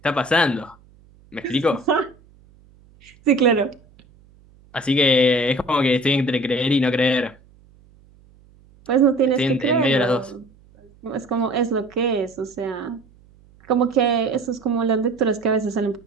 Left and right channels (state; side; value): noise; right; hum, 28 dB below the sound